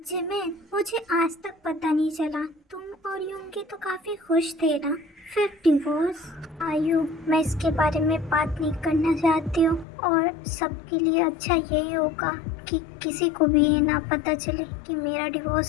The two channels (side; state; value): right; drops out; at 9.9 s